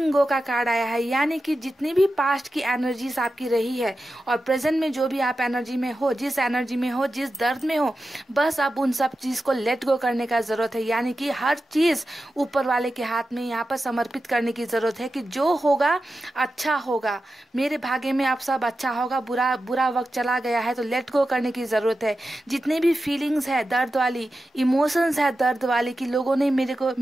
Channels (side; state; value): both; normal; correlation 0.92